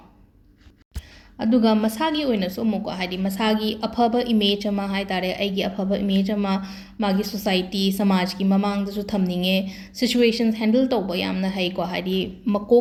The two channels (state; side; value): identical; both; correlation 1.00